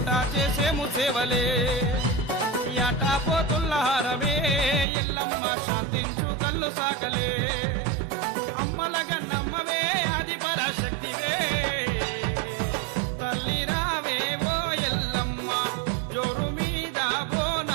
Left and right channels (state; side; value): drops out; left; at 4.9 s